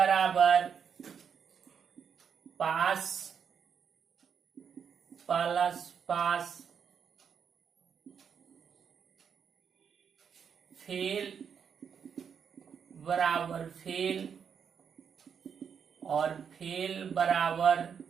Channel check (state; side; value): quieter; left; 7.2 dB